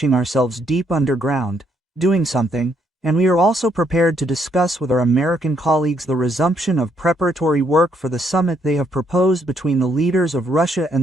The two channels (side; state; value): both; normal; correlation 0.72